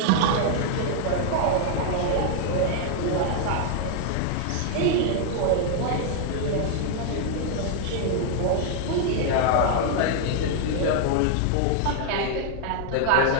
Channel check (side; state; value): both; different; correlation 0.00